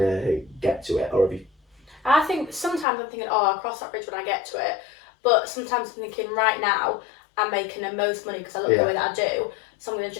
get to it, or have you? I think sometimes I'm thinking, oh, I'll cross that bridge when I get to it, but sometimes I'm thinking, right now, I'm making the most money because I look the way that I do, so I'm going to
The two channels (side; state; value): right; drops out; at 2.9 s